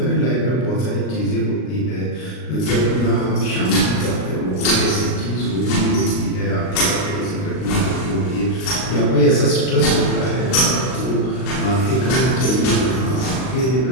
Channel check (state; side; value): late; right; 38 ms